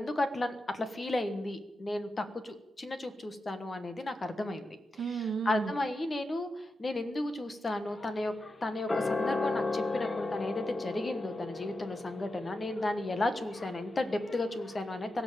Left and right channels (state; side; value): normal; both; correlation 0.89